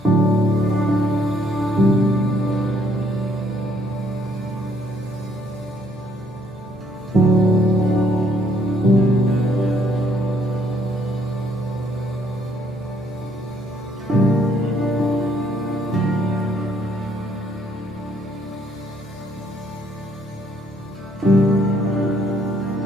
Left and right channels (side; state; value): both; normal; correlation 0.67